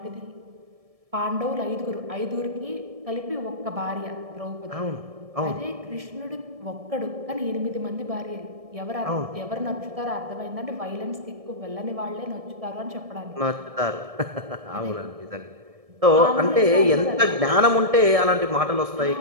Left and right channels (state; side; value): late; left; 1.7 ms